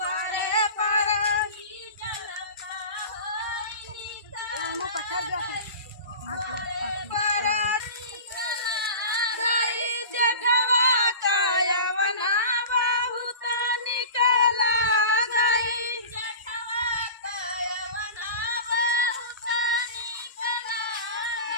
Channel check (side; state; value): both; inverted; correlation -0.35